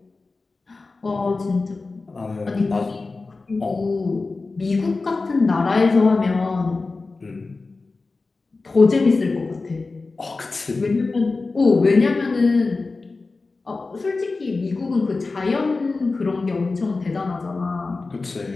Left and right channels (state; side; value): quieter; right; 3.8 dB